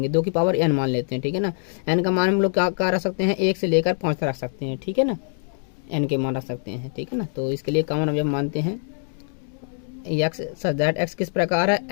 2 की पावर n मान लेते हैं। ठीक है ना। n का मान हम लोग क्या रख सकते हैं, 1 से लेकर 5 तक रख सकते हैं। ठीक है ना, n के मान रख सकते हैं। ठीक है ना। तो इसके लिए कॉमन अवयव मानते हैं एक्स, सच दैट एक्स किस प्रकार है,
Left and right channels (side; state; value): right; silent; digital silence